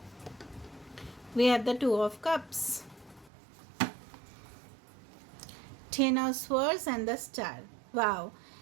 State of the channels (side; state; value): left; drops out; at 3.3 s